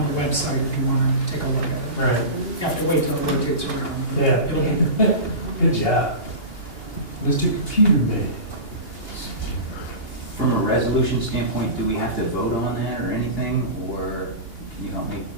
the website, if you want to take a look at it. Right. You have to wait till it rotates around. Yeah. It'll be Good job. Mr. Computer Man. from a resolution standpoint, do we have to vote on that or anything, or can you help me?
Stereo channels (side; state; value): right; late; 2.8 ms